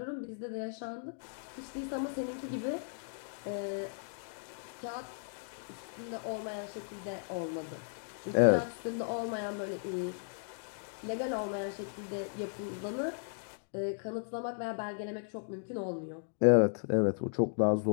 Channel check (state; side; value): silent; right; digital silence